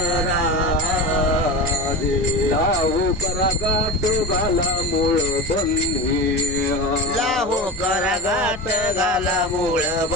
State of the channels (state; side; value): normal; both; correlation 0.25